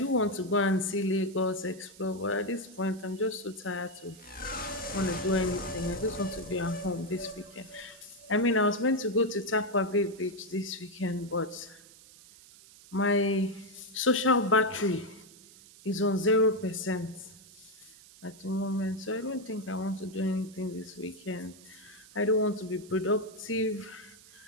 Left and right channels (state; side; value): noise; right; hiss, 22 dB below the sound